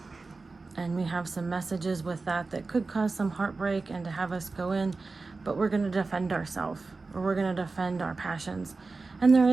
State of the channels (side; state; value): left; quieter; 3.8 dB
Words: and we have some messages with that that could cause some heartbreak and to have us go in, but we're going to defend ourselves, or we're going to defend our passions. And there